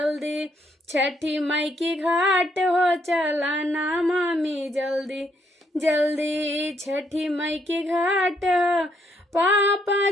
छठी माई की घाट हो चला ना मामी जल्दी जल्दी, छठी माई की घाट हो। पापा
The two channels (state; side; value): normal; both; correlation 0.73